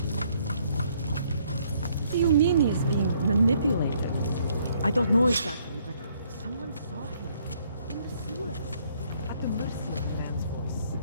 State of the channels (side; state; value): both; inverted; correlation -0.66